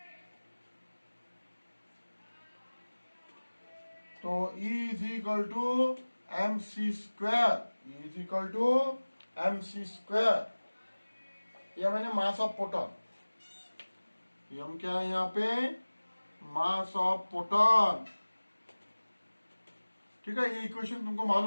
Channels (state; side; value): inverted; both; correlation -1.00